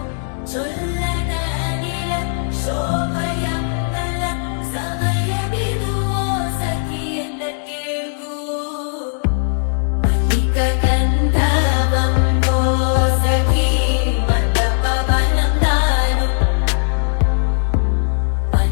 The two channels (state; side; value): silent; right; digital silence